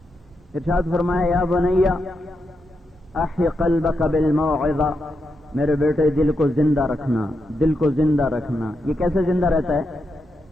ارشاد فرمایا، یا بنیا احی قلبک بالموعظہ، میرے بیٹے دل کو زندہ رکھنا، دل کو زندہ رکھنا۔ یہ کیسے زندہ رہتا ہے؟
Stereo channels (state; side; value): normal; both; correlation 0.85